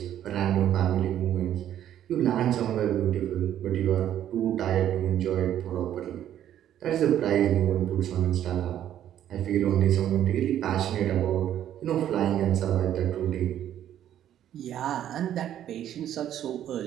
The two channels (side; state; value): left; quieter; 11.1 dB